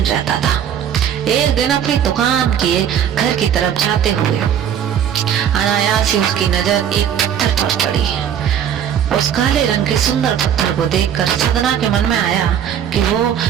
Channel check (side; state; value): left; quieter; 9.2 dB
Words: रहता था। एक दिन अपनी दुकान के घर की तरफ जाते हुए अनायास ही उसकी नजर एक पत्थर पर पड़ी। उस काले रंग के सुंदर पत्थर को देखकर सदना के मन में आया कि वो